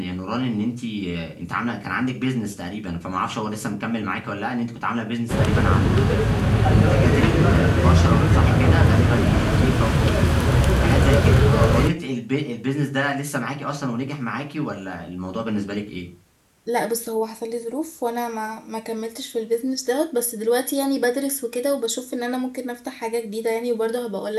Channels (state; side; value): identical; both; correlation 1.00